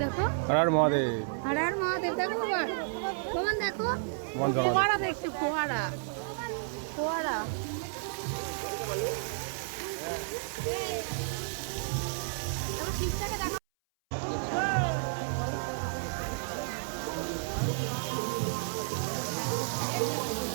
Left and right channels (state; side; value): silent; left; 57 dB below the other